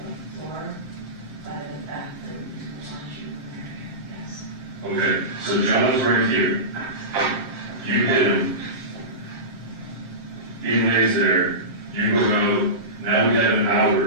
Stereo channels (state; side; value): late; left; 7.6 ms